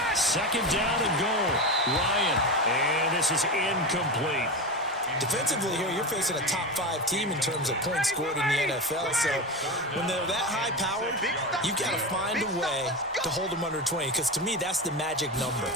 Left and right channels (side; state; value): both; normal; correlation 0.21